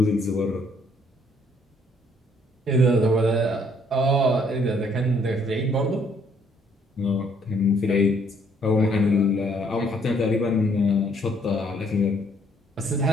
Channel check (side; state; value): both; normal; correlation 0.65